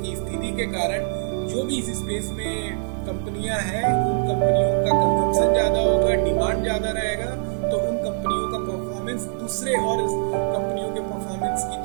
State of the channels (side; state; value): left; silent; digital silence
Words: स्थिति के कारण जो भी इस स्पेस में कंपनियां हैं उन कंपनियों का कंजम्पशन ज़्यादा होगा, डिमांड ज़्यादा रहेगा, तो उन कंपनियों का परफॉर्मेंस दूसरे और कंपनियों के परफॉर्मेंस की